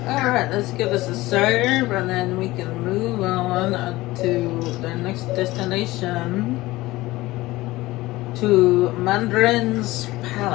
Alright. Alright, let's give this a serve and then we can move on to the next destination. To Mandarin's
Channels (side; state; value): right; quieter; 18.8 dB